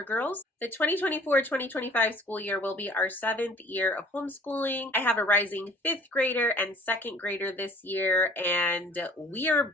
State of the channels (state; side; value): normal; both; correlation 0.52